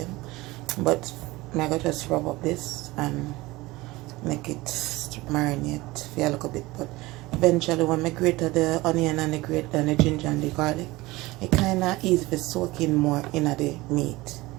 But I'm going to just rub up this and make it marinate for a little bit. But eventually when I grate the onion and the ginger and the garlic, it kind of easy to soak in more in the meat.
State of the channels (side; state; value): left; quieter; 20.4 dB